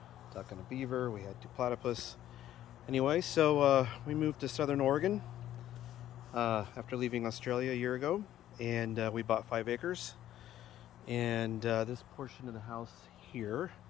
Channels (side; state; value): right; quieter; 12.4 dB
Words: duck and a beaver. We had 2 platypus. Anyway, so we moved to Southern Oregon after leaving Australia a year ago, and we bought 5 acres. And this portion of the house here,